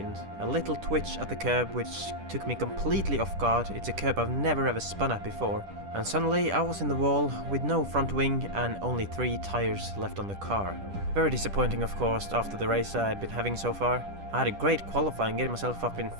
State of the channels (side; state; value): left; late; 10 ms